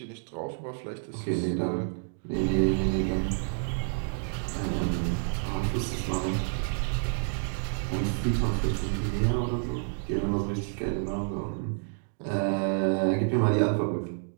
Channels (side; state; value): left; silent; digital silence